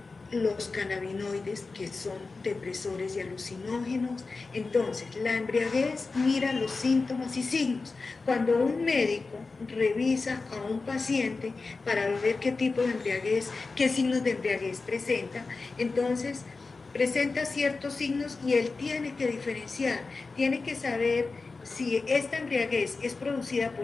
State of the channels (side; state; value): right; quieter; 4.0 dB